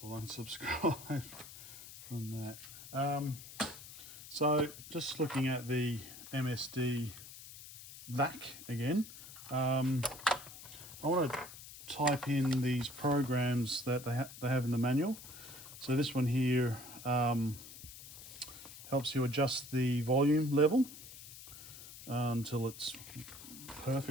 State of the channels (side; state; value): left; noise; hiss, 15 dB below the sound